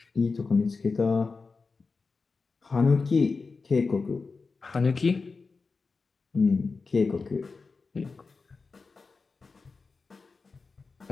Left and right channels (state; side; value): quieter; right; 4.3 dB